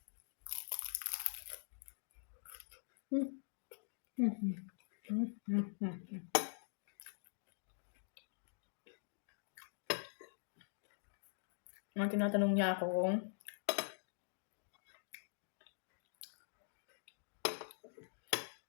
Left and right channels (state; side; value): silent; right; digital silence